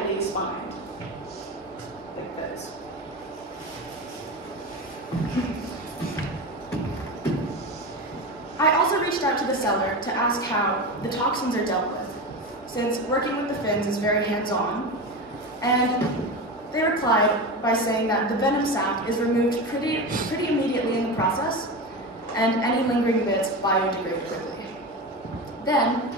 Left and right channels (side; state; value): both; normal; correlation 0.23